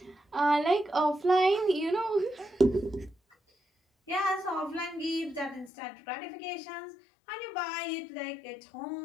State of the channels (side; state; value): right; drops out; at 5.7 s